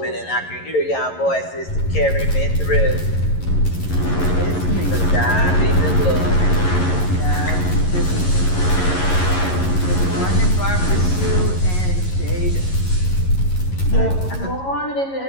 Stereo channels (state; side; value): late; right; 11 ms